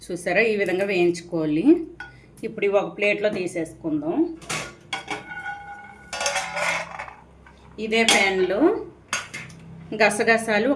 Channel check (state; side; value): identical; both; correlation 1.00